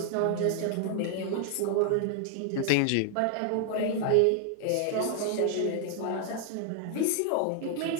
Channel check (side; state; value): both; different; correlation 0.00